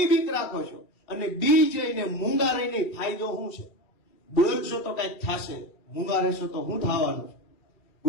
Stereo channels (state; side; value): late; right; 2.4 ms